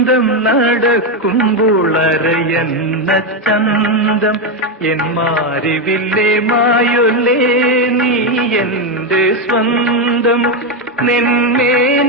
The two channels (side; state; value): both; normal; correlation 0.07